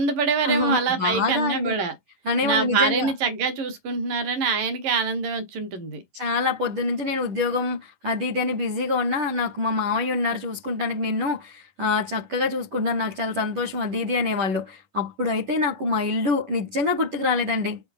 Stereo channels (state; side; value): late; left; 11 ms